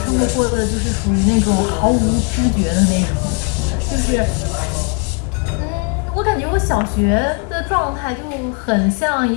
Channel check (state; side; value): quieter; right; 38.3 dB